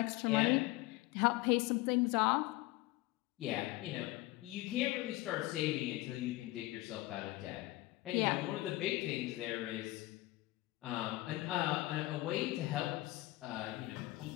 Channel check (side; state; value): right; quieter; 19.1 dB